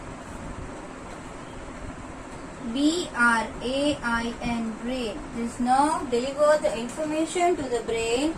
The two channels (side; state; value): both; identical; correlation 1.00